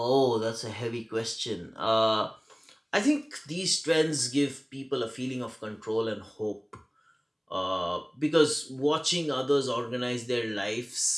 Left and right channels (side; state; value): both; identical; correlation 1.00